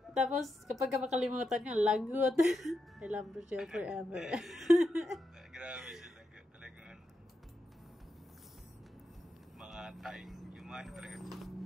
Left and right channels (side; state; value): both; normal; correlation 0.86